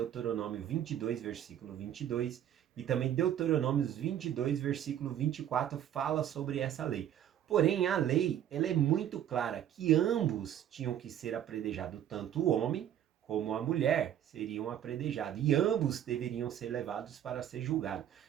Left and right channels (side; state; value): left; quieter; 10.6 dB